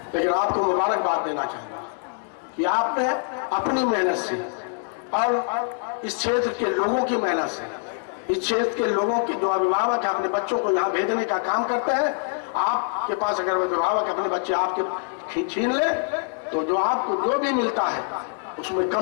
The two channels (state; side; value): silent; right; 55 dB below the other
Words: लेकिन आपको मुबारकबाद देना चाहूंगा कि आपने अपनी मेहनत से और इस क्षेत्र के लोगों की मेहनत से, इस क्षेत्र के लोगों के जो अभिभावक अपने बच्चों को यहाँ भेजने का काम करते हैं, आपके पास अगर अभिभावक अपने बच्चे आपके छीन ले तो जो आपको जो भी मिलता है उसमें कम